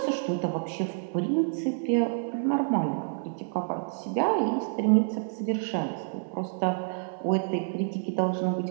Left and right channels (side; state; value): left; silent; digital silence